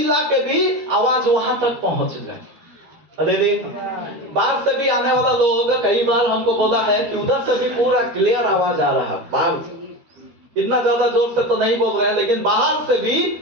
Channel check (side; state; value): left; late; 13 ms